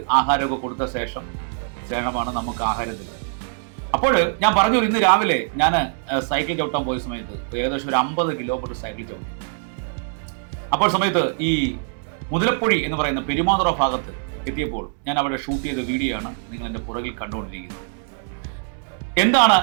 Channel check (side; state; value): left; silent; 64 dB below the other